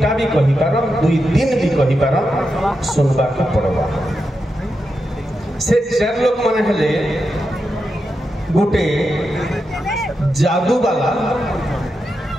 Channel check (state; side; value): normal; both; correlation 0.87